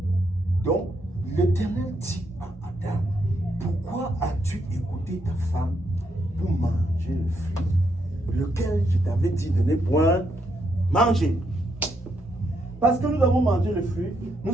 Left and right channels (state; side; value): normal; both; correlation 0.77